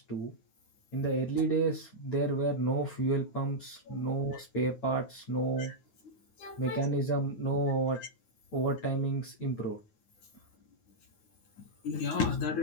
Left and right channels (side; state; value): right; late; 9.5 ms